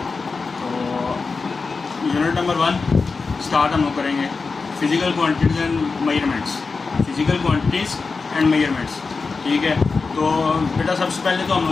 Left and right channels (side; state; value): right; quieter; 4.4 dB